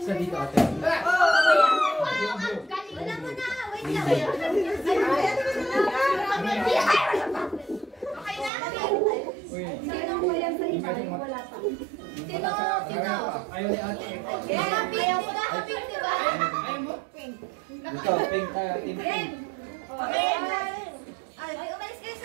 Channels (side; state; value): left; drops out; at 8.5 s